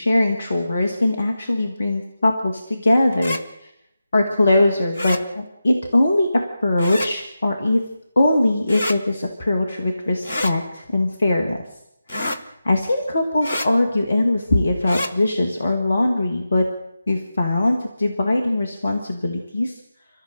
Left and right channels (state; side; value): inverted; both; correlation -0.91